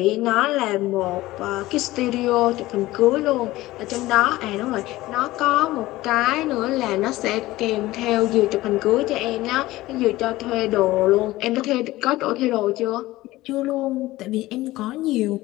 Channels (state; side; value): quieter; right; 17.7 dB